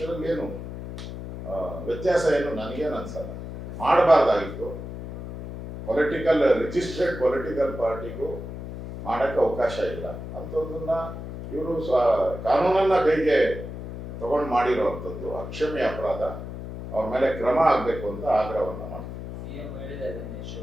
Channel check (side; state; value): left; noise; hum, 9 dB below the sound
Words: ಏನು ವ್ಯತ್ಯಾಸ ಏನು ನನಗೇನು ಅನ್ಸಲ್ಲ. ಮಾಡಬಾರ್ದಾಗಿತ್ತು. ರಿಜಿಸ್ಟ್ರೇಡ್ ಪೊಲಿಟಿಕಲ್ ಪಾರ್ಟಿಗೂ ಮಾಡೋಕ್ಕೆ ಅವಕಾಶ ಇಲ್ಲ. ಅಂಥದ್ದನ್ನ ಇವರು ಕಾನೂನನ್ನ ಕೈಗೆ ತಗೊಂಡು ಮಾಡಿರೋವಂಥದ್ದು ಅಕ್ಷಮ್ಯ ಅಪರಾಧ. ಅವ್ರ ಮೇಲೆ ಕ್ರಮ ಆಗಬೇಕು ಅಂತ ಆಗ್ರಹವನ್ನು ಮಾಡ್ತೀವಿ.